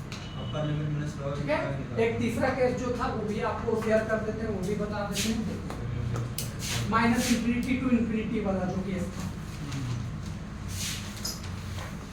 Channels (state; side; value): identical; both; correlation 1.00